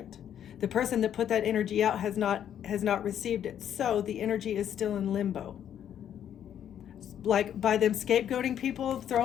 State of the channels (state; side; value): quieter; right; 9.8 dB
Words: The person that put that energy out has not received it. So the energy is still in limbo. Like by them scapegoating people,